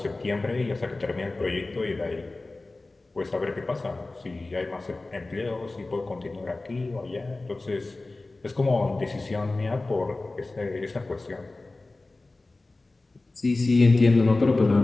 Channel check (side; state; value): right; quieter; 3.2 dB